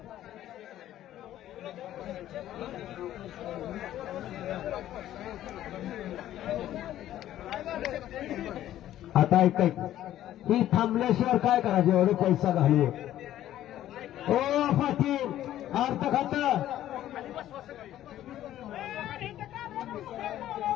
आता ऐकाय ही थांबल्याशिवाय काय करायचे? एवढे पैसा घालू. ओ पाटील अर्थ खातं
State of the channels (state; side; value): quieter; right; 12.8 dB